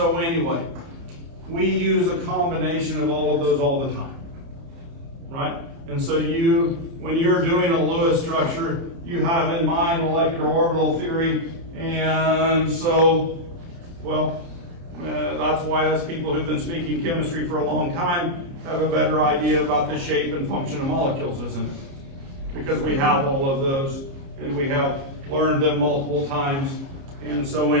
anyway, we use a combination of all of those all the time, right? And so when you're doing a Lewis structure, you have in mind molecular orbital theory. And so, well, that's why us people who've been speaking chemistry for a long time have a better idea about the shape and function of molecules, isn't it? Because we have all of those, and we have learned them multiple times. And so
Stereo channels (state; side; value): late; left; 30 ms